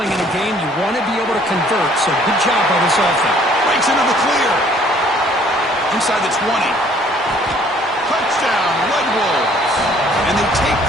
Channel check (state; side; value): normal; both; correlation 0.59